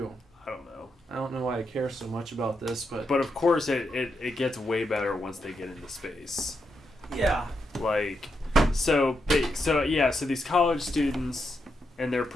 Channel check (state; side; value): normal; both; correlation 0.83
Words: I don't know. I don't know why I care so much about this, but of course it gets way better once they get into space. Yeah. Like, so these college students and their